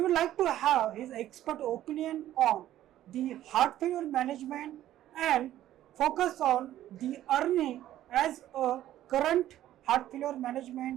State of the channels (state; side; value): quieter; left; 13.0 dB